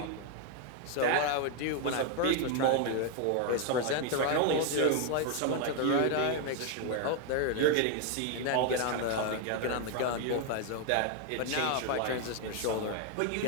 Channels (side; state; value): both; different; correlation 0.01